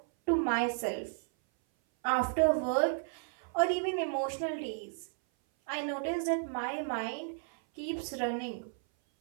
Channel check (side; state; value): left; silent; 56 dB below the other